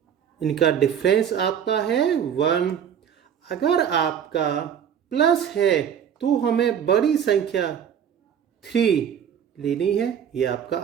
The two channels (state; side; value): quieter; left; 8.5 dB